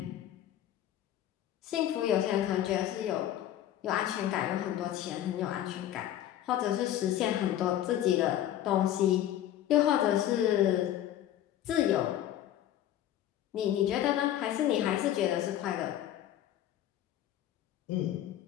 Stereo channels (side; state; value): right; quieter; 12.0 dB